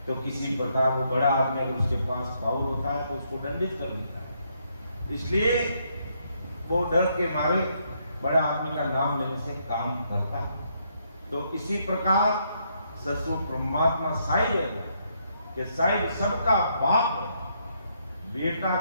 तो किसी प्रकार वो बड़ा आदमी अगर उसके पास पावर होता है तो उसको दंडित कर देता है। इसलिए वो डर के मारे बड़े आदमी का नाम लेने से काम करता है। तो इसी प्रकार ससुर परमात्मा साहिब है कि साहिब सबका बाप है, बेटा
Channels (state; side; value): inverted; both; correlation -0.74